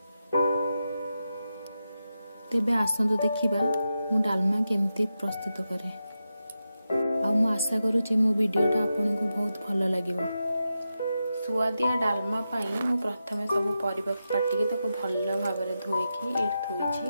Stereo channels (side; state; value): both; inverted; correlation -0.89